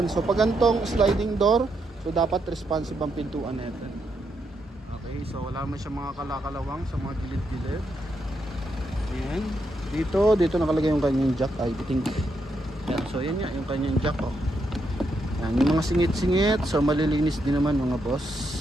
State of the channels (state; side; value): normal; both; correlation 0.80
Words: So, pag gantong sliding door, so dapat responsive ang pintuan natin. Okay. So, wala man siya mga kalakalawang sa mga gilid-gilid. Yan. Dito nakalagay yung kanyang jack. I think. Yan. So, yan yan. Yung kanyang jack, oh. Yan. Yung mga singit-singit. So, malilinis din naman mga boss.